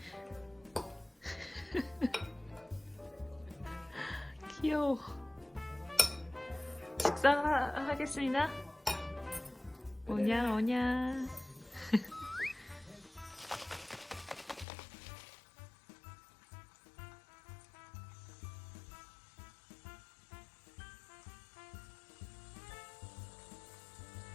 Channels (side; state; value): right; drops out; at 14.7 s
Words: 귀여워. 식사하겠습니다. 오냐 오냐.